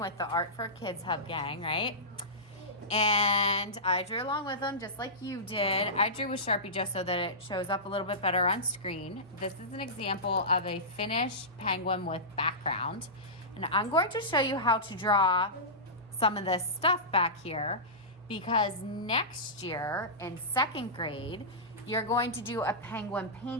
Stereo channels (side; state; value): both; normal; correlation -0.17